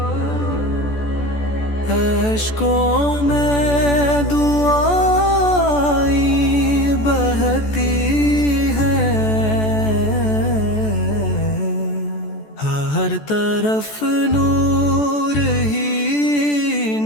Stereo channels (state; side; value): late; right; 14 ms